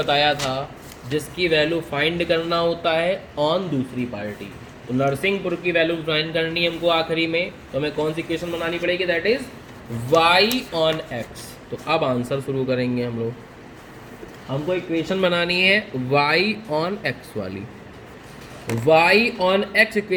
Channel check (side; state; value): both; identical; correlation 1.00